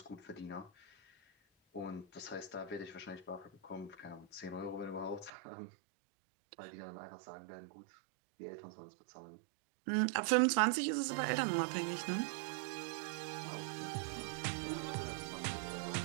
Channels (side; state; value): left; drops out; at 5.3 s